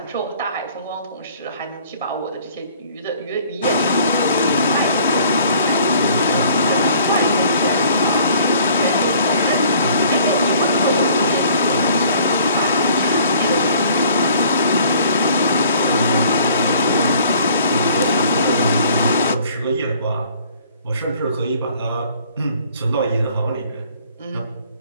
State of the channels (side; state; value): both; inverted; correlation -0.56